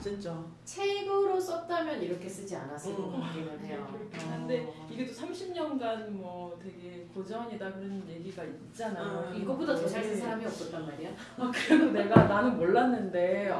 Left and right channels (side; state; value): both; identical; correlation 1.00